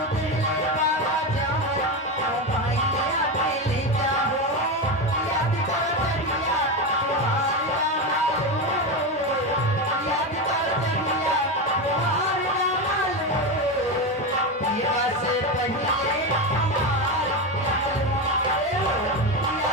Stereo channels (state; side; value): normal; both; correlation 0.16